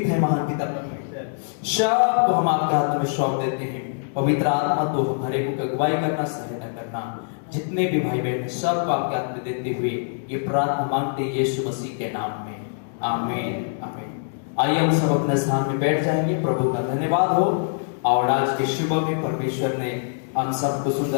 हैं महान पिता परमेश्वर, सब को हम आपके हाथ में सौंप देते हैं। पवित्र आत्मा तो हमारे को अगुवाई करना, सहायता करना। जितने भी भाई बहन सबको आपके हाथ में देते हुए ये प्रार्थना मांगते हैं यीशु मसीह के नाम में, आमीन आमीन। आइए हम सब अपने स्थान में बैठ जाएंगे। प्रभु का धन्यवाद हो। और आज के सुबह में परमेश्वर ने हम सबको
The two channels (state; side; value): silent; right; digital silence